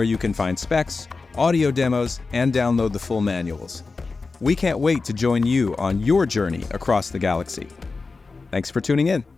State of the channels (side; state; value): right; quieter; 4.1 dB